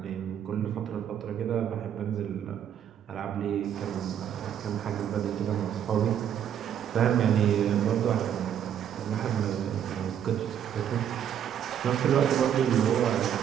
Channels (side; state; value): left; quieter; 9.5 dB